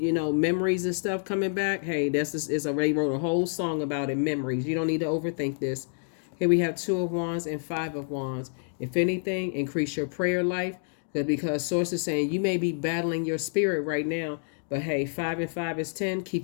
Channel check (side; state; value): right; silent; digital silence